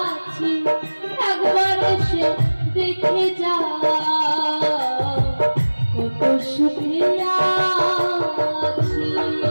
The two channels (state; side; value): inverted; both; correlation -1.00